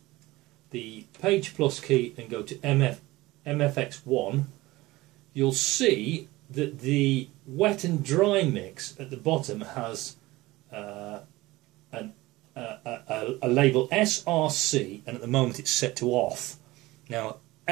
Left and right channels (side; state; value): left; quieter; 19.5 dB